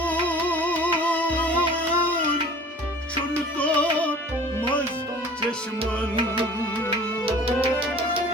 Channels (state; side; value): normal; both; correlation 0.46